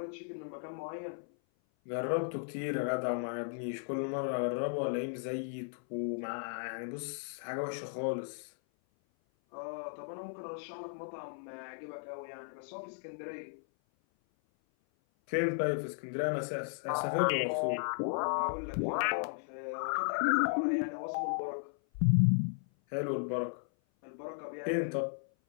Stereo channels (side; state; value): right; silent; 54 dB below the other